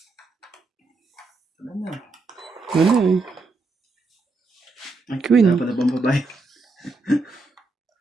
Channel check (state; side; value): quieter; left; 3.5 dB